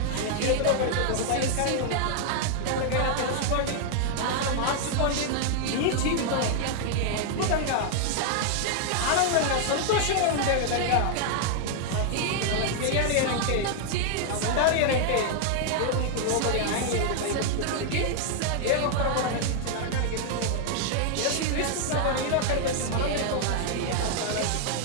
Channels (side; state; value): both; different; correlation 0.00